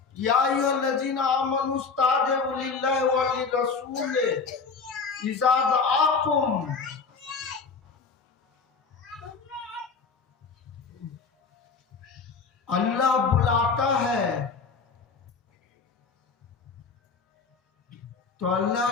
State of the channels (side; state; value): right; quieter; 5.0 dB